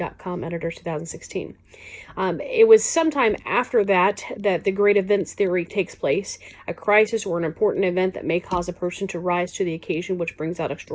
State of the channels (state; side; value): identical; both; correlation 1.00